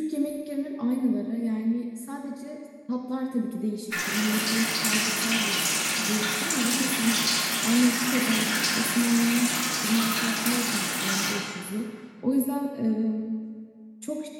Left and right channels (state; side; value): identical; both; correlation 1.00